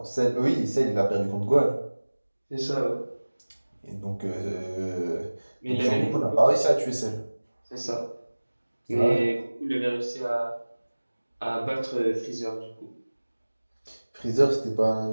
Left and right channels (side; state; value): both; inverted; correlation -1.00